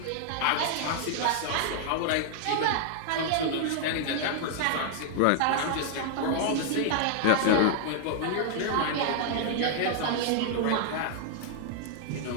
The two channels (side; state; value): both; different; correlation 0.00